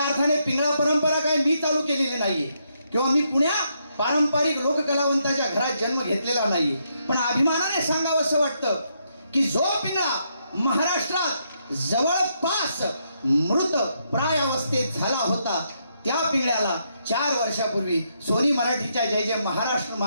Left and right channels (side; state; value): both; inverted; correlation -0.77